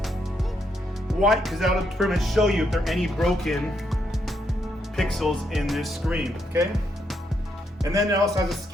White, because that'll pretty much show you if there are any broken pixels in this screen, okay? And then it also has a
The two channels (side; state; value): both; normal; correlation 0.78